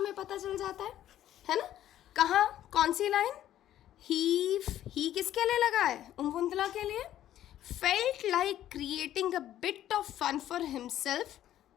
पता चल जाता है ना? कहाँ, कौन सी लाइन? ही किसके लिए लगा है? उम्वुंदला के लिए. Felt like creating a bit of fun for himself.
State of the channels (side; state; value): right; quieter; 12.2 dB